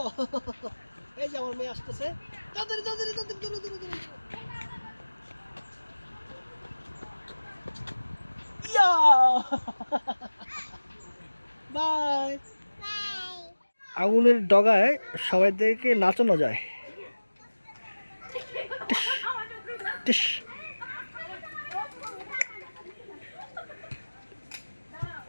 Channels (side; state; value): both; inverted; correlation -1.00